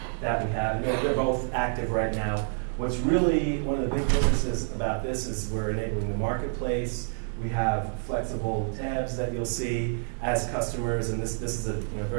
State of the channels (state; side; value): silent; left; 59 dB below the other